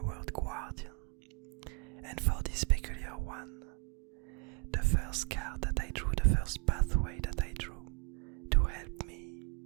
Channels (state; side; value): quieter; left; 32.7 dB